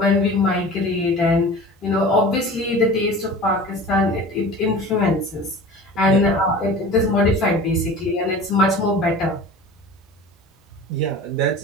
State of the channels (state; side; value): normal; both; correlation 0.38